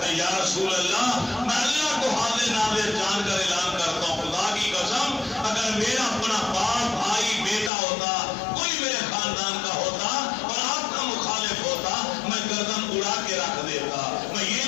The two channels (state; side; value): drops out; right; at 7.7 s